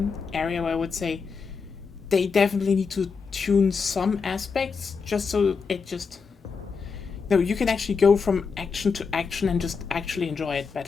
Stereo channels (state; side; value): quieter; right; 5.3 dB